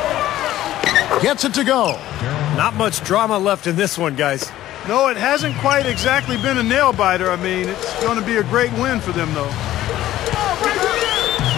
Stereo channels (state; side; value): quieter; right; 14.0 dB